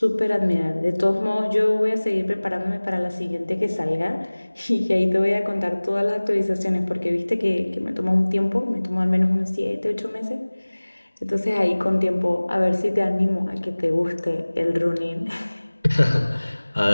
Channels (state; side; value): inverted; both; correlation -1.00